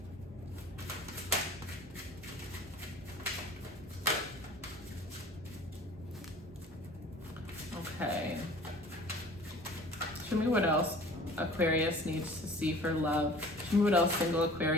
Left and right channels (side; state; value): both; normal; correlation 0.46